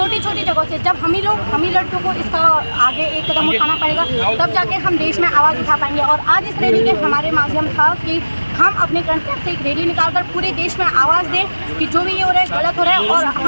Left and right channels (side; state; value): both; inverted; correlation -1.00